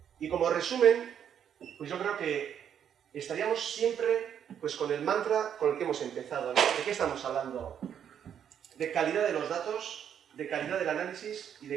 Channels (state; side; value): quieter; left; 8.8 dB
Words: Y como resumen, pues yo creo que estaríamos siempre pues, con el mantra con el que hemos empezado, ¿no? ¿De qué estamos hablando? De calidad de los datos, de calidad del análisis y